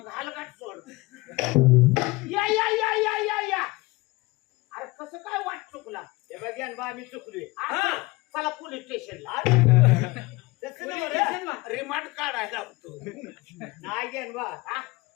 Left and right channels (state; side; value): quieter; right; 22.4 dB